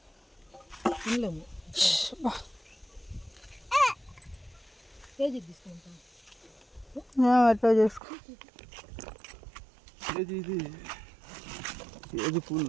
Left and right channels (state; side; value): drops out; left; at 8.0 s